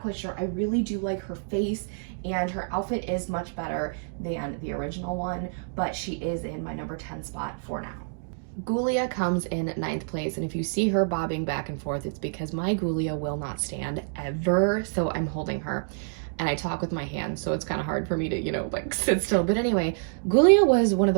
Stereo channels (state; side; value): silent; left; digital silence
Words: quite sure. I really do like her face, and her outfit is much better than the original one, but she is in my number 10 spot for now. Ghoulia comes in 9th place, and if you see her bobbing back and forth, it's because my Ghoulia will not stand ever, so I'm holding her. And I talk with my hands, so it's kind of hard for me to, you know, like sit still. But anyway, Ghoulia was one of